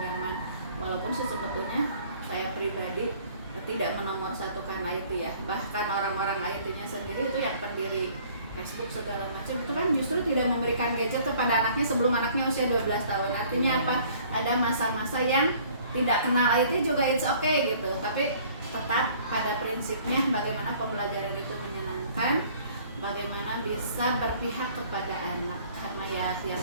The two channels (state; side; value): inverted; both; correlation -0.55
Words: zaman. Walaupun sih sebetulnya saya pribadi tidak menomorsatukan IT ya. Bahkan orang-orang IT-nya sendiri itu yang pendiri Facebook segala macam itu kan justru tidak memberikan gadget kepada anaknya sebelum anaknya usia 12 tahun. Artinya apa? Ada masa-masa yang tidak kenal IT juga it's okay gitu. Tapi tetap pada prinsipnya bagaimana pembelajaran itu menyenangkan, bagaimana bisa berpihak kepada anak. Karena ya yang